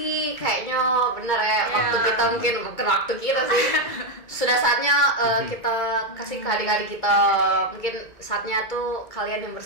kayaknya bener ya, waktu kita mungkin bukan waktu kita sih. Sudah saatnya kita kasih ke adik-adik kita. Mungkin saatnya tuh kalian yang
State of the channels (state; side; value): late; right; 2.2 ms